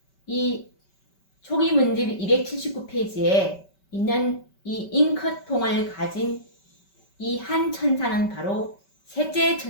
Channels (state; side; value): late; right; 5.2 ms